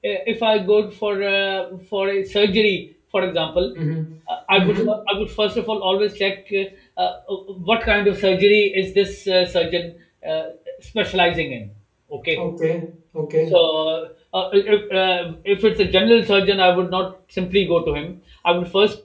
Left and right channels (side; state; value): both; identical; correlation 1.00